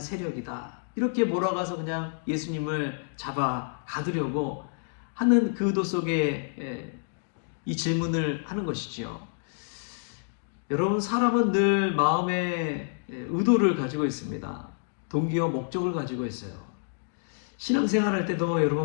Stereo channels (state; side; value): silent; right; digital silence